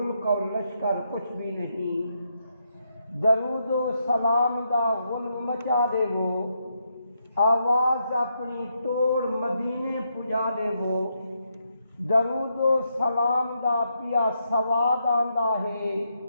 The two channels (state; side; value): inverted; both; correlation -0.80